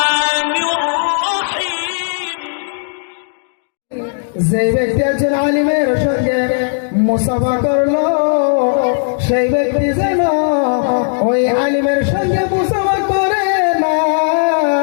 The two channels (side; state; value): right; silent; digital silence